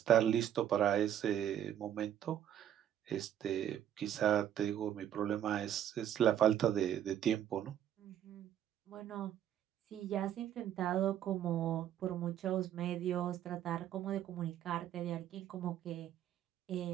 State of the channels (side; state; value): left; quieter; 10.5 dB